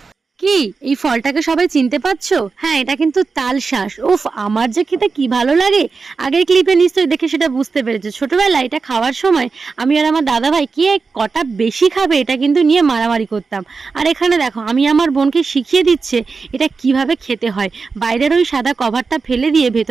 কি এই ফলটাকে সবাই চিনতে পারছো? হ্যাঁ, এটা কিন্তু তালশাঁস। উফ, আমার যে খেতে কি ভালো লাগে। আগের ক্লিপে নিশ্চয়ই দেখে সেটা বুঝতে পেরেছো। ছোটবেলায় এটা খাওয়ার সময় আমি আর আমার দাদা ভাই কে কটা বেশি খাবে এটা কিন্তু নিয়ে মারামারি করতাম। আর এখানে দেখো আমি আমার বোনকে শিখিয়ে দিচ্ছে এটা কিভাবে খেতে হয়। বাইরের ওই সাদা কভারটা ফেলে দিয়ে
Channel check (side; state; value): left; quieter; 4.6 dB